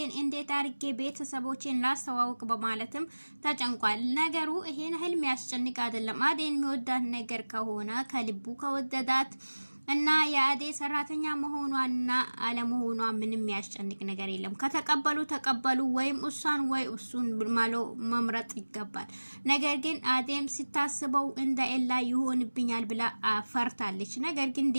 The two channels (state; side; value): inverted; both; correlation -1.00